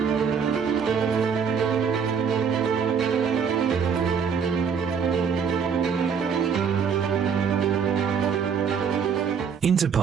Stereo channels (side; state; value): left; quieter; 6.6 dB